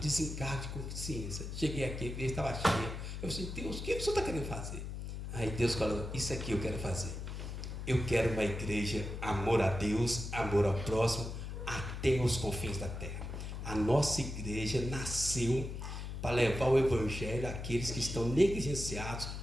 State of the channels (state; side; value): noise; left; hum, 6 dB below the sound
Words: de consciência. Cheguei aqui, a igreja estava cheia. Eu disse: Deus, o que o senhor está querendo fazer? Aí Deus falou: isso aqui eu quero fazer. Eu quero uma igreja, amor a Deus, amor ao próximo, até os confins da terra. A nossa igreja nasceu para levar o evangelho àqueles que estão negligenciados